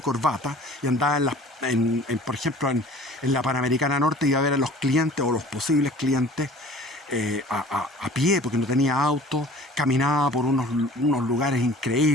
y andaba por ejemplo, en la Panamericana Norte, iba a ver a los clientes o los posibles clientes a pie, porque no tenía auto, caminaba por unos lugares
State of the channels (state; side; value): normal; both; correlation 0.47